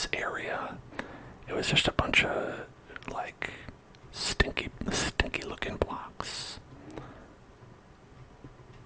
area, it was just a bunch of like stinky looking blocks.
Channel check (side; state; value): both; identical; correlation 1.00